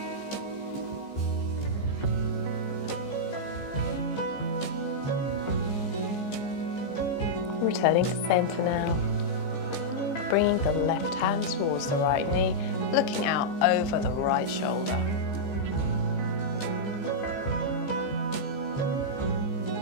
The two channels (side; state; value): right; late; 15 ms